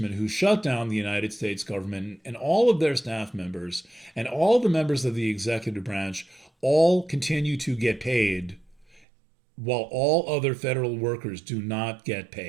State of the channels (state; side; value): drops out; left; at 9.1 s